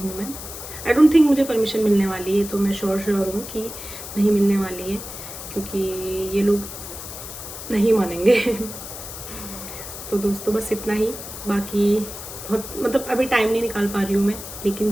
मैं। आई डोंट थिंक मुझे परमिशन मिलने वाली है, तो मैं श्योर हूँ कि नहीं मिलने वाली है, क्योंकि ये लोग नहीं मानेंगे तो दोस्तों बस इतना ही। बाकी बहुत मतलब अभी टाइम नहीं निकाल पा रही हूँ मैं, लेकिन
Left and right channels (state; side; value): noise; left; hiss, 11 dB below the sound